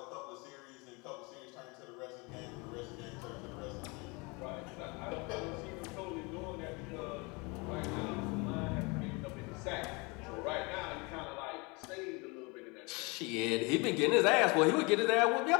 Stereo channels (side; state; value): right; quieter; 28.2 dB